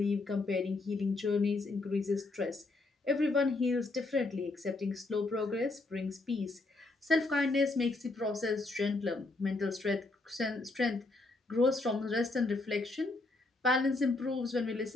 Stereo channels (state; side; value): quieter; right; 3.2 dB